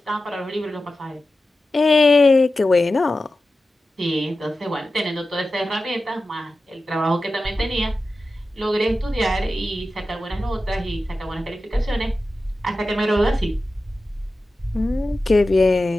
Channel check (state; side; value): normal; both; correlation 0.94